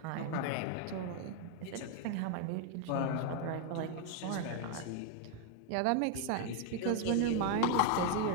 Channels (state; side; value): different; both; correlation 0.00